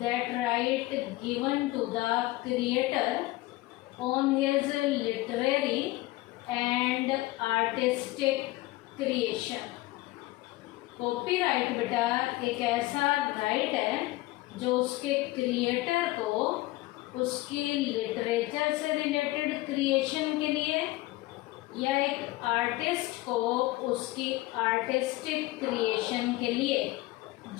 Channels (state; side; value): quieter; right; 19.1 dB